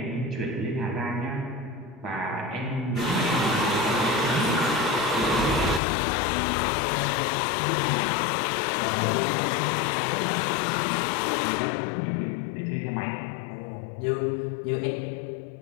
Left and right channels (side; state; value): right; drops out; at 5.8 s